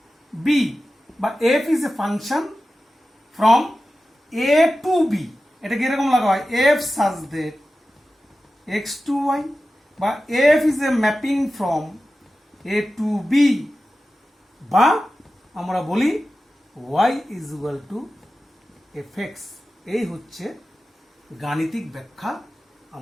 B, বা f is a function from A to B, এটাকে এরকম লাগা হয় f such that x to y, বা f is a mapping from A to B, বা আমরা বলি y is equal to f x. এই হচ্ছে গাণিতিক ব্যাখ্যা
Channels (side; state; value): both; normal; correlation 0.94